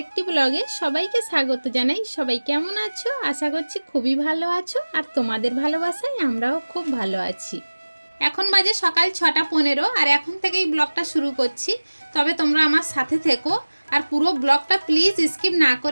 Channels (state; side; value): inverted; both; correlation -1.00